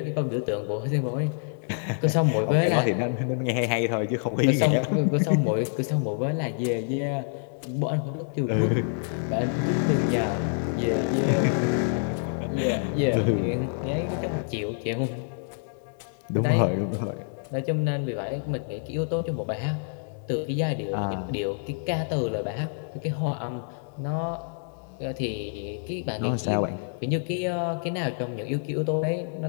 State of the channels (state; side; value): silent; right; digital silence